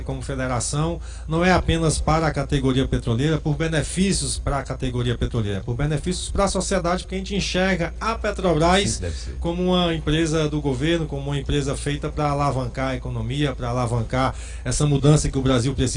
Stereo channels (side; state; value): both; identical; correlation 1.00